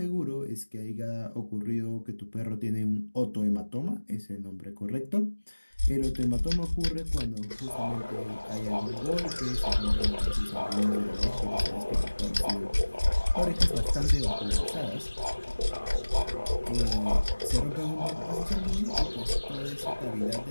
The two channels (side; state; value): both; inverted; correlation -1.00